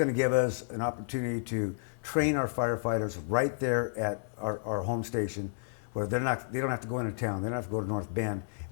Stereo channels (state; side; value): silent; right; 57 dB below the other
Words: to give us an opportunity to train our firefighters right there at our home station, where they don't have to go into town. They don't have to go to North Bend.